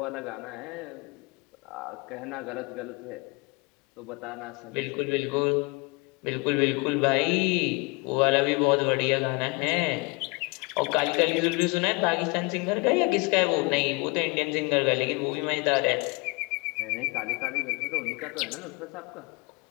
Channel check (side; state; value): right; quieter; 28.5 dB